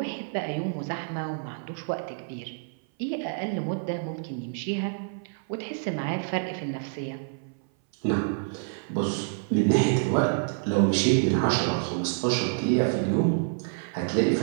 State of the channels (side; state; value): left; silent; 57 dB below the other